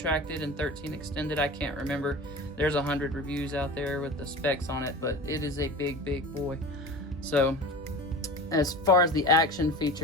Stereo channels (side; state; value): both; normal; correlation 0.34